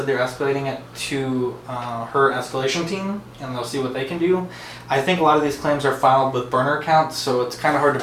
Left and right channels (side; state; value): both; identical; correlation 1.00